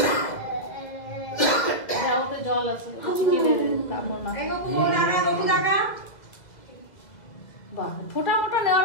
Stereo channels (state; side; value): late; right; 2.0 ms